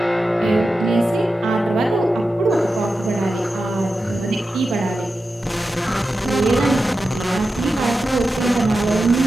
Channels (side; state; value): both; normal; correlation 0.91